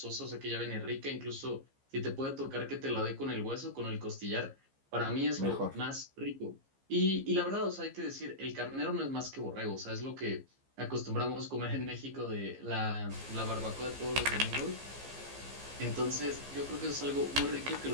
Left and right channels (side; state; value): left; late; 15 ms